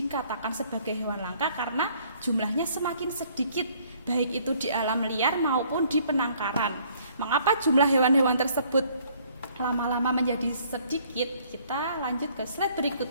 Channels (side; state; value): both; inverted; correlation -0.61